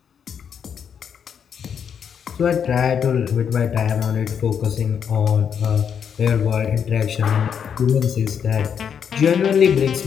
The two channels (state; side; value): quieter; right; 7.6 dB